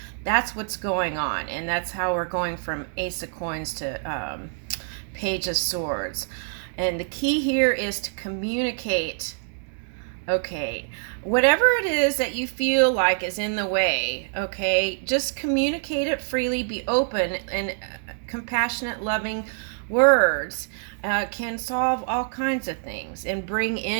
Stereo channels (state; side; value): silent; left; digital silence